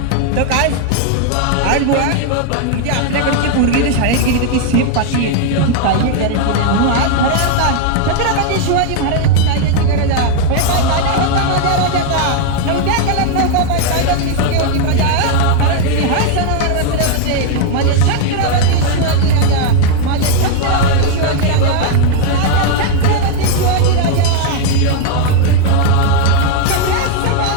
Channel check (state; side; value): different; both; correlation 0.00